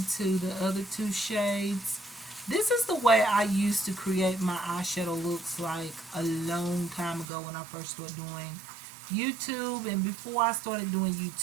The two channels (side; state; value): left; drops out; at 7.2 s